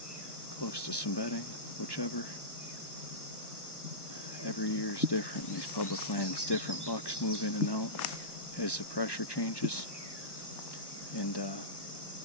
close to some bedding, whichever. Every year is different in these public lands. Different bucks move in and out as the pressure changes, and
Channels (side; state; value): right; late; 1.1 ms